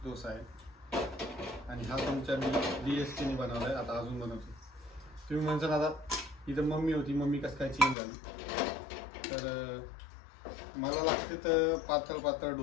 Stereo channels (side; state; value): right; drops out; at 8.0 s